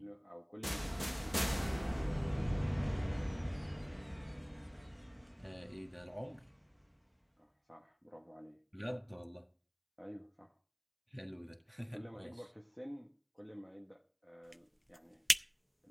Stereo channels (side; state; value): both; identical; correlation 1.00